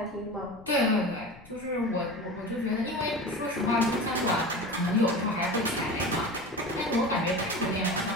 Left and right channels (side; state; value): left; noise; rumble, 21 dB below the sound